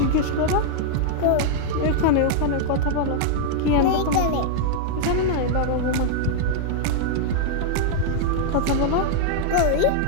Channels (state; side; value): different; both; correlation -0.01